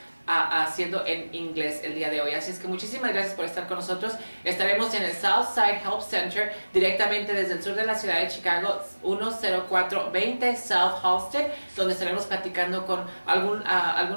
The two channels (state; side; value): inverted; both; correlation -1.00